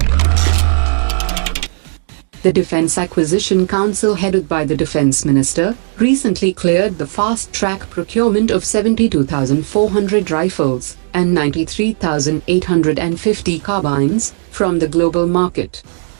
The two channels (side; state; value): left; silent; 66 dB below the other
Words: The Defense Acquisition Council, headed by the Defense Minister, recently cleared the fast-track procurement of 72,400 rifles and 93,850 carbines from the global market.